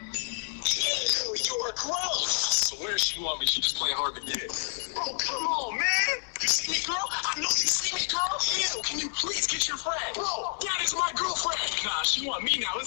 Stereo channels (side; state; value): right; silent; digital silence